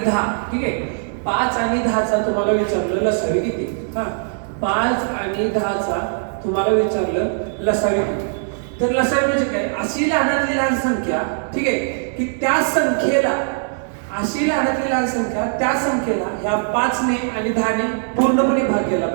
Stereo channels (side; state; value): left; silent; 66 dB below the other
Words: 10, ठीक आहे. 5 आणि 10चा तुम्हाला विचारलं लसावी किती. हा, 5 आणि 10चा तुम्हाला विचारलं लसावी किती. तर लसावी म्हणजे काय, अशी लहानातली लहान संख्या, ठीक आहे, की त्या संख्येला, अशी लहानातली लहान संख्या त्या संख्येला ह्या 5 ने आणि 10 ने पूर्णपणे भाग केला